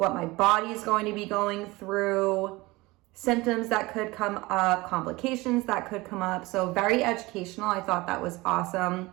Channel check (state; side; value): quieter; left; 21.6 dB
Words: my body is going to be going through, symptoms that could come up, complications that could come up. So very educational. I thought that was awesome.